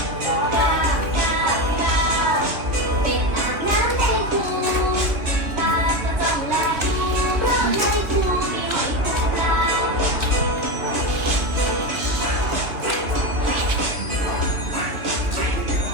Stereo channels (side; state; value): left; late; 2.9 ms